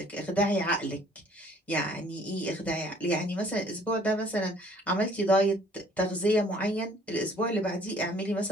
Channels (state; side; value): normal; both; correlation 0.57